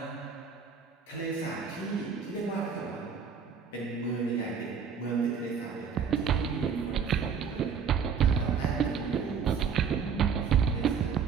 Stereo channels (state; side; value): quieter; left; 6.5 dB